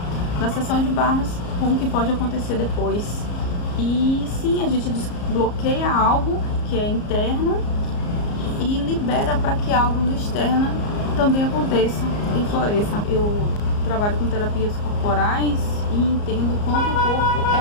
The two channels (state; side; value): late; right; 34 ms